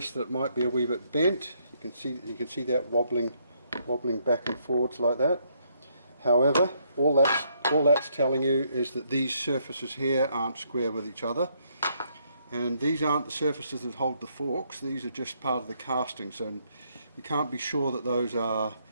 that it might be a wee bit bent. You can see that wobbling back and forwards like that. However, all that's telling you is that these surfaces here aren't square with each other, and these aren't the surfaces that hold the forks. These are just part of the casting, so you can't be sure that those are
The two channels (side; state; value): both; inverted; correlation -0.72